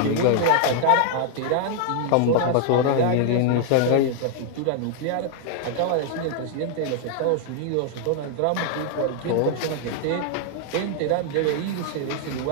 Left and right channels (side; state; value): both; different; correlation 0.00